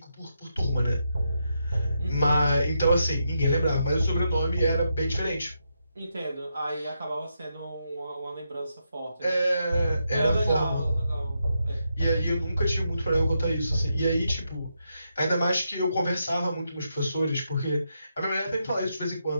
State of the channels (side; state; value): both; inverted; correlation -0.83